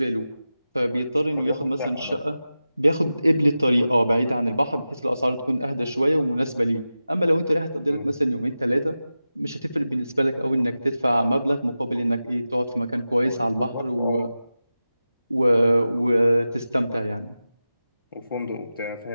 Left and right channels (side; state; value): both; inverted; correlation -0.94